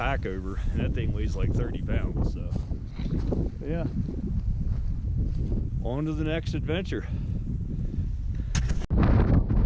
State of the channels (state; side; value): identical; both; correlation 1.00